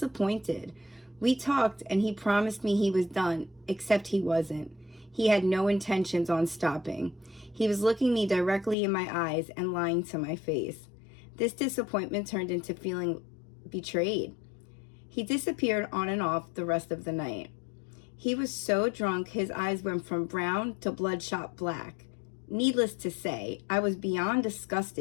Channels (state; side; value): drops out; right; at 8.8 s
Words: We talked and he promised me he was done, except he wasn't. He had no intentions on stopping. He was looking me directly in my eyes and lying to my face. This disappointment turned into feeling betrayed. He disappeared on and off the rest of the night. He was so drunk his eyes went from brown to bloodshot black. Needless to say, I was beyond